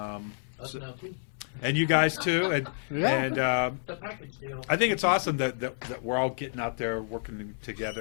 now too. And you guys too, and the package deal. I think it's awesome that we're all getting out there working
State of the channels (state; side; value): silent; right; 58 dB below the other